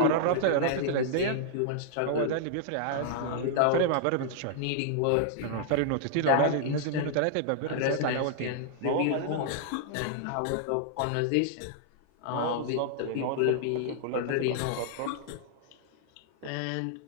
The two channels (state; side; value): different; both; correlation -0.01